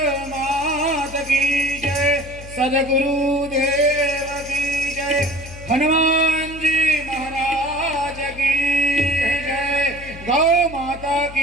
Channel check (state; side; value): noise; left; hum, 15 dB below the sound